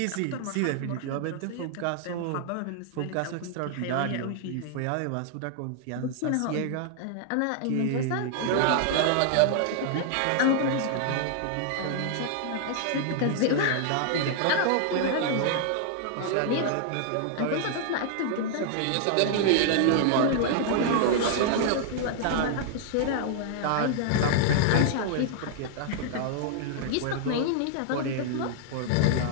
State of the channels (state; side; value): different; both; correlation -0.01